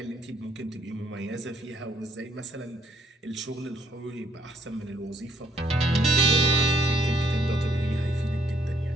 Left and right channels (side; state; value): both; normal; correlation 0.70